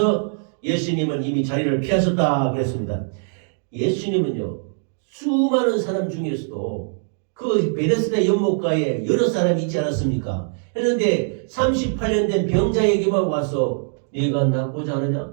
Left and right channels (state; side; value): silent; left; digital silence